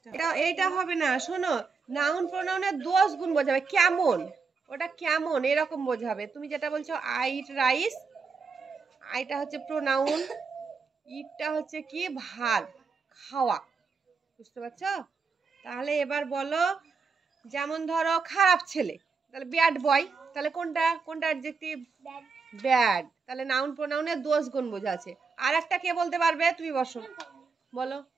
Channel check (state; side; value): quieter; left; 4.9 dB